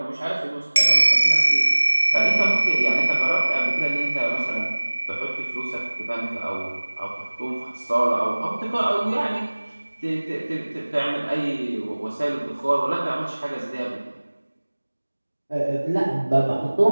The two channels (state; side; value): inverted; both; correlation -1.00